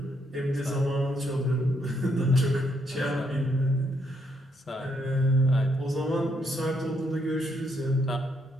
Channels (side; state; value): both; normal; correlation 0.74